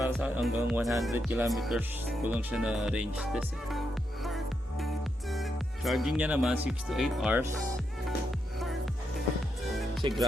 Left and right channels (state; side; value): normal; both; correlation 0.82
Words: sa hanggang 100 kilometers ko lang siya na range test eh. Charging niya naman 6 to 8 hours kasi